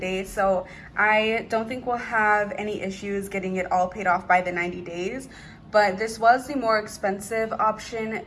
so I don't think we'll have any issues getting it all paid off by the 90 days. But this was the more expensive option.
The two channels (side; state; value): both; identical; correlation 1.00